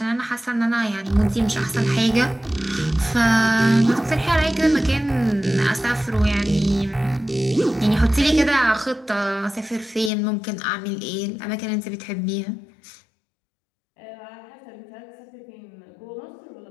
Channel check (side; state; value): right; drops out; at 10.1 s